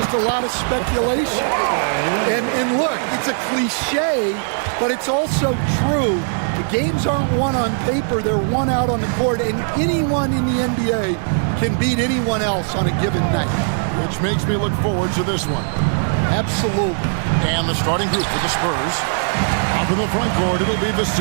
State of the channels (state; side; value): silent; left; 63 dB below the other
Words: a lot of speculation. And look, it's a cliche, but it's also true. The games aren't won on paper, they're won out on the court, and anyone in the NBA can beat anyone else on a given night. Which makes me look forward to this one. Absolutely. And the starting group for the Spurs. Up in the front court, it'll be